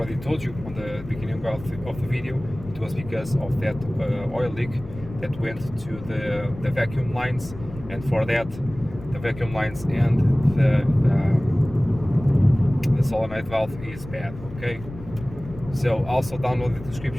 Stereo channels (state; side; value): noise; left; rumble, 14 dB below the sound